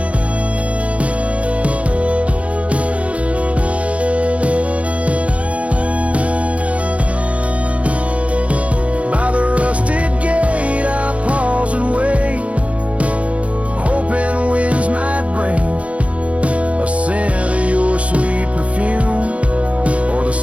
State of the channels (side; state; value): left; late; 0.064 ms